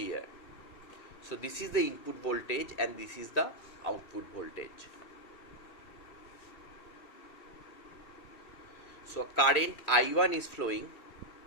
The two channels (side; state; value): right; late; 2.3 ms